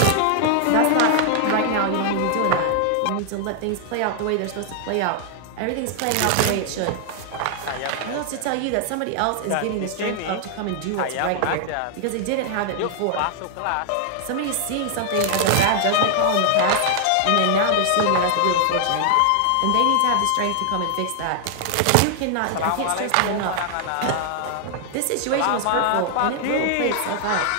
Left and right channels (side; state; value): both; different; correlation 0.00